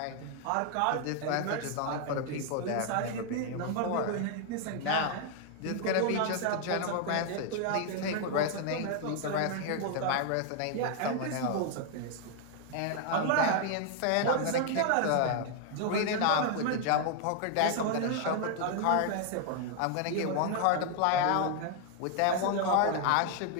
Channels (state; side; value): different; both; correlation 0.00